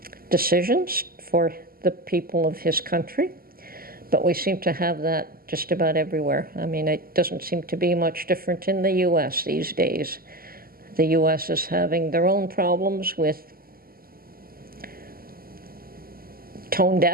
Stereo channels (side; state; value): left; late; 0.43 ms